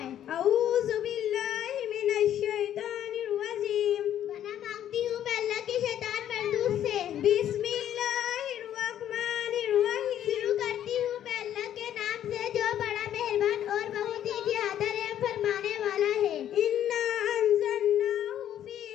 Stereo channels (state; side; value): quieter; right; 10.9 dB